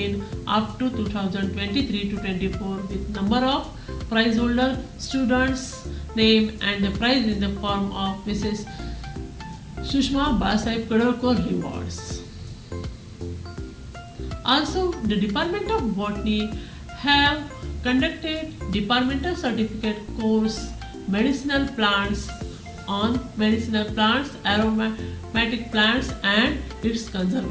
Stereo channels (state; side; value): identical; both; correlation 1.00